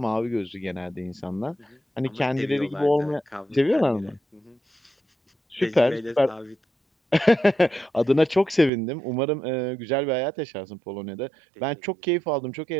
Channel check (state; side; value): drops out; left; at 8.7 s